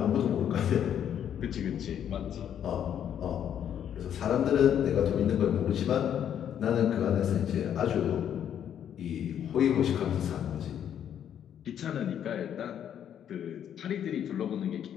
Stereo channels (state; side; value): quieter; right; 9.5 dB